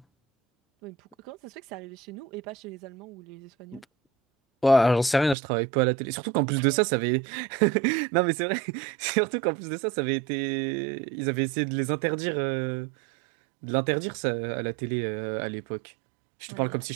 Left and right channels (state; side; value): drops out; left; at 5.4 s